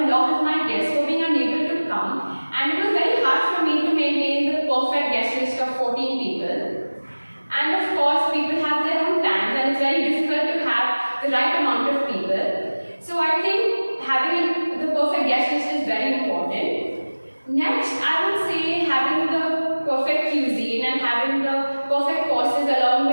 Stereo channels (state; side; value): inverted; both; correlation -1.00